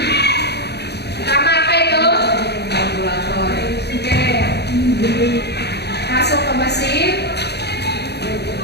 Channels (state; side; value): late; right; 0.48 ms